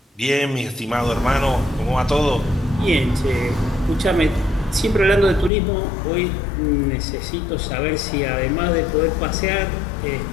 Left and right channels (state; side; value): drops out; right; at 5.5 s